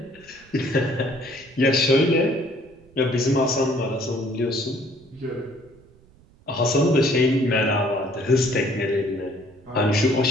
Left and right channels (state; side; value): noise; right; rumble, 28 dB below the sound